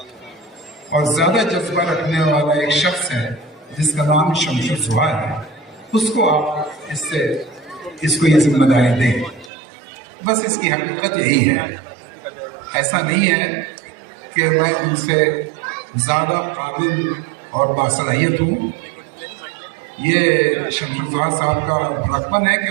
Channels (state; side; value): drops out; left; at 9.5 s